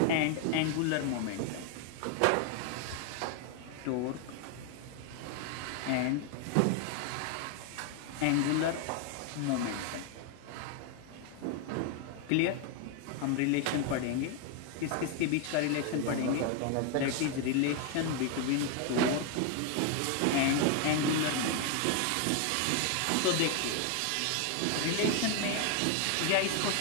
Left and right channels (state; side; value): different; both; correlation 0.01